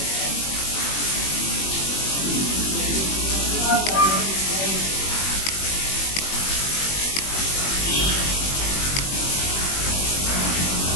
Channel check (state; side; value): late; right; 21 ms